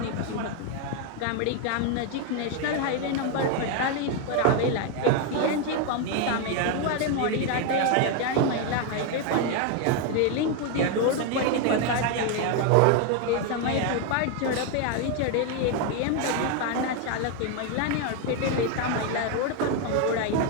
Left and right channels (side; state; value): both; different; correlation 0.01